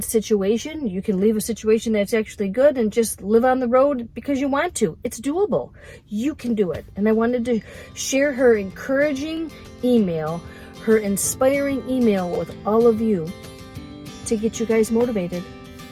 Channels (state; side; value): identical; both; correlation 1.00